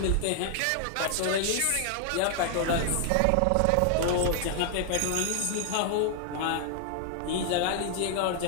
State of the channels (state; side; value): different; both; correlation 0.00